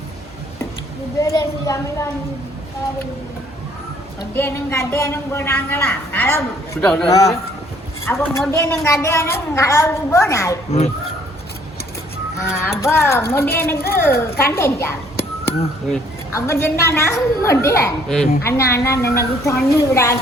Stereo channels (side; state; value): both; normal; correlation 0.62